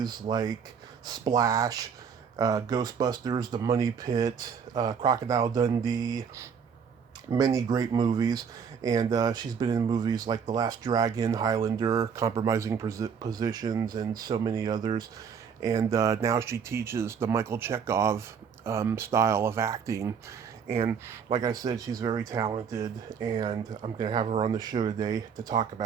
like Splash, Ghostbusters, The Money Pit, Crocodile Dundee, many great movies. And she's been in movies like The Last Dragon, Highlander, Compromising Positions, and so many others. And now she teaches the Michael Chekhov style of acting. And like I said, she's very talented, and I'm going to have her on the show today to talk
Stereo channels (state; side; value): quieter; left; 6.8 dB